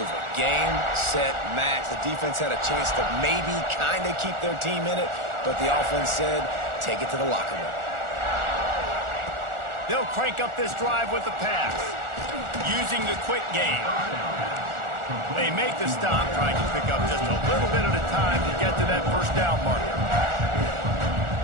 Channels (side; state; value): left; late; 1.4 ms